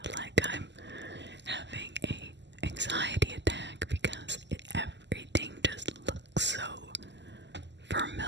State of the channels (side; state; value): left; late; 0.52 ms